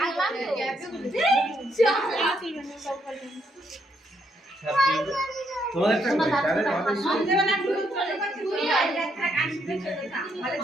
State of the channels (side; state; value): both; normal; correlation 0.75